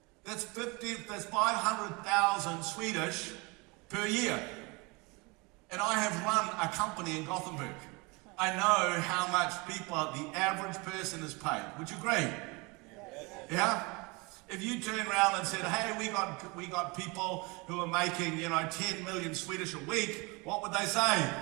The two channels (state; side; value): quieter; left; 27.3 dB